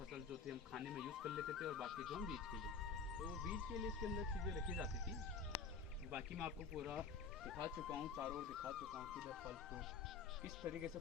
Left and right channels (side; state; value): right; quieter; 5.4 dB